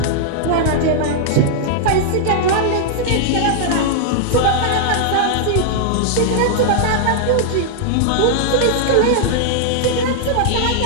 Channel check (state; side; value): different; both; correlation -0.01